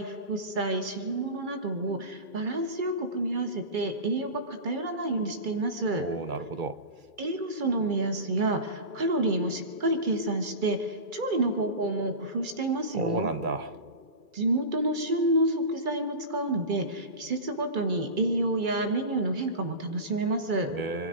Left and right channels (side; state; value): left; late; 2.3 ms